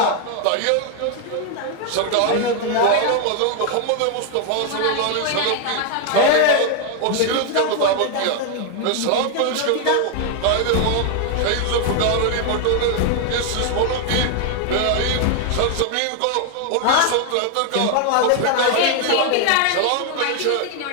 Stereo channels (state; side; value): different; both; correlation 0.00